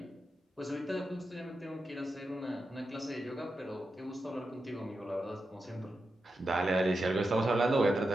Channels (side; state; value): both; normal; correlation 0.88